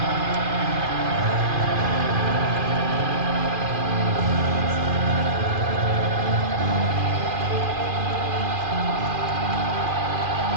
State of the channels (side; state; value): left; late; 2.4 ms